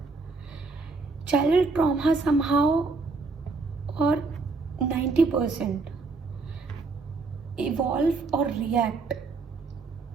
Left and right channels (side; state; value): left; quieter; 4.0 dB